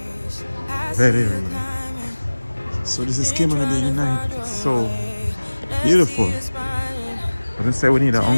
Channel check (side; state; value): both; inverted; correlation -1.00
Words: Very real. So this is Cayman Bay in the night. It's so beautiful. As I say, we need an